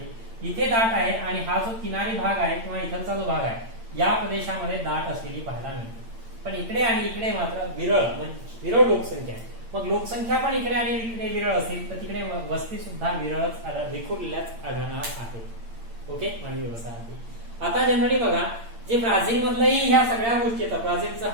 इथे दाट आहे आणि हा जो किनारी भाग आहे किंवा इथलचा जो भाग आहे या प्रदेशामध्ये दाट असलेली पाहायला मिळते. पण इकडे आणि इकडे मात्र विरळ लोकसंख्या आहे. मग लोकसंख्या पण इकडे आणि इकडे विरळ असेल तर तिकडे वस्ती सुद्धा विरळच विखुरलेल्याच आढळणार आहेत. ओके, मानवी वसाहती. आता जनरली बघा जे ब्राझील मधलंही ह्या सगळ्या गोष्टी येतात. ब्राझीलचं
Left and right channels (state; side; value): late; left; 8.8 ms